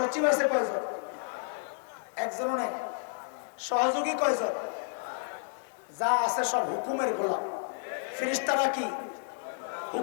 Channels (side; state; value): right; silent; digital silence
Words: আছে কয়জন? একজনও নাই। সহযোগী কয়জন? যা আছে সব হুকুমের গোলাম। ফেরেশতারা কি?